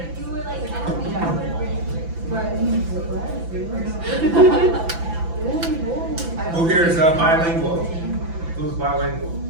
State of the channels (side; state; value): left; late; 6.0 ms